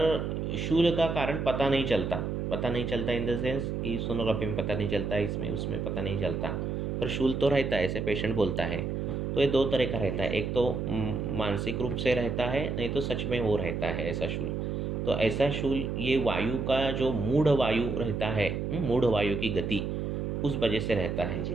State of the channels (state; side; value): noise; right; hum, 2 dB below the sound